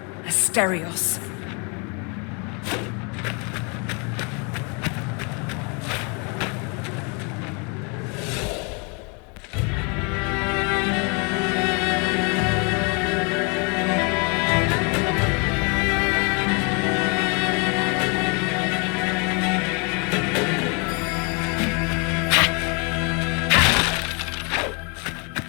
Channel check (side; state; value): right; quieter; 33.6 dB